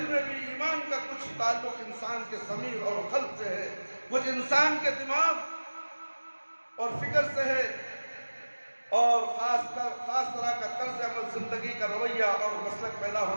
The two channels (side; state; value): both; inverted; correlation -1.00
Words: میں بھی ایمان کا کچھ تعلق انسان کے ضمیر اور قلب سے ہے، کچھ انسان کے دماغ اور فکر سے ہے، اور خاص طرح کا طرز عمل، زندگی کا رویہ اور مسلک پیدا